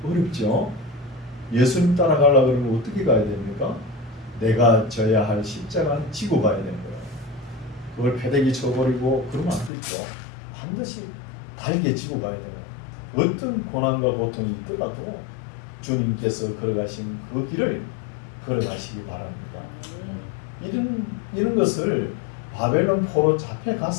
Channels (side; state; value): right; drops out; at 9.7 s